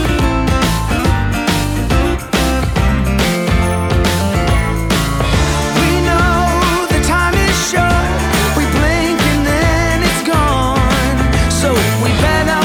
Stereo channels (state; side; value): identical; both; correlation 1.00